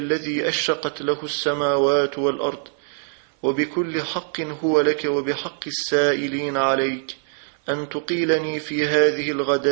أشرقت له السماوات والأرض، وبكل حق هو لك وبحق السائلين عليك، أن تقيلني في هذه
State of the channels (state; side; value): silent; left; 61 dB below the other